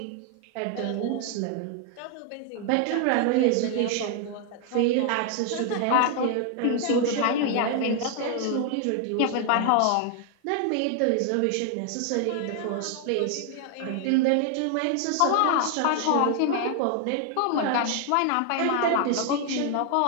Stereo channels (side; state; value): both; different; correlation 0.00